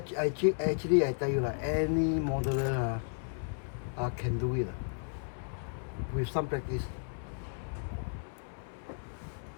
I tell you, like, any modeler can do it with some practice.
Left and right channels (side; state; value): right; silent; 55 dB below the other